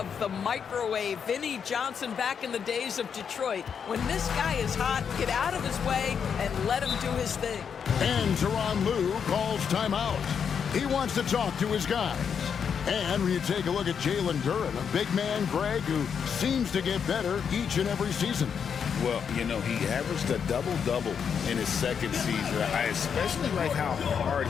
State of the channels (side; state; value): right; quieter; 7.1 dB